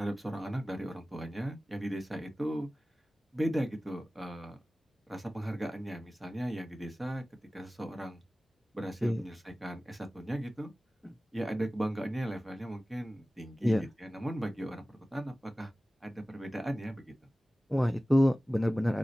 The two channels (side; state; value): both; normal; correlation 0.97